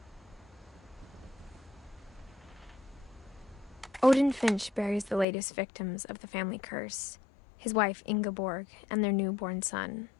Odin Finch buries the latest victims of the family curse, his wife Ingeborg and their newborn son,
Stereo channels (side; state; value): right; drops out; at 5.2 s